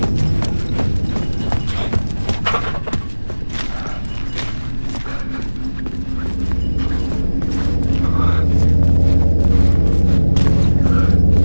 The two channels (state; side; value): inverted; both; correlation -1.00